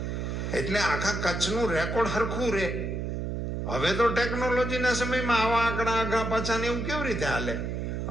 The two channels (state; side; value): noise; right; hum, 3 dB below the sound